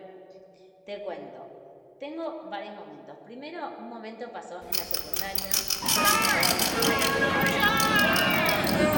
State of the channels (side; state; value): both; identical; correlation 1.00